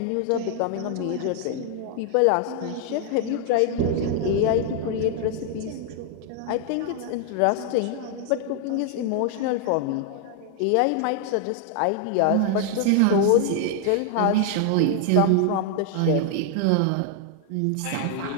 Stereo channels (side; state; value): both; different; correlation 0.00